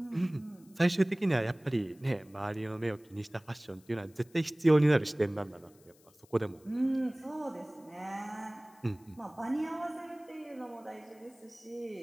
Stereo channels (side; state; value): left; noise; hiss, 29 dB below the sound